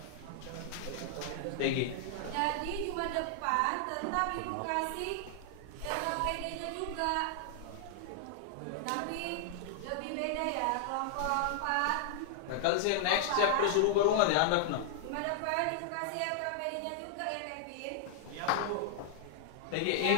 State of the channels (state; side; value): different; both; correlation -0.01